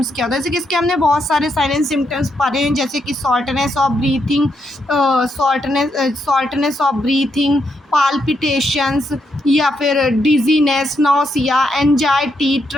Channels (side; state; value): both; normal; correlation 0.79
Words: क्या होता है। जैसे कि इसके हमने बहुत सारे साइन एंड सिम्टम्स पढ़े हैं, जैसे कि शॉर्टनेस ऑफ ब्रीथिंग, पाल्पिटेशंस या फिर dizziness, nausea, anxiety,